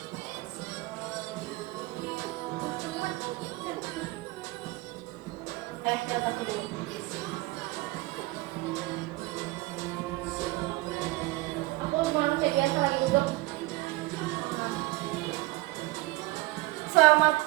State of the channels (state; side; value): quieter; left; 20.6 dB